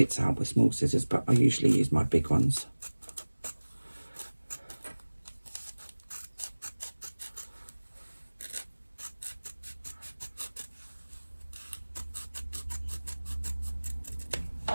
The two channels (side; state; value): both; inverted; correlation -1.00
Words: out with small scissors, but I usually use my big ones.